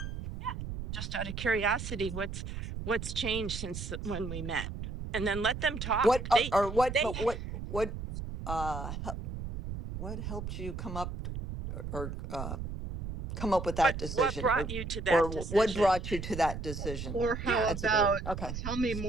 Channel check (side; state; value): right; noise; rumble, 6 dB below the sound